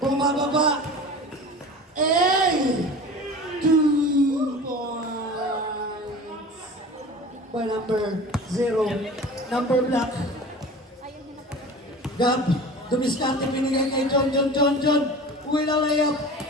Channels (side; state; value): both; normal; correlation 0.37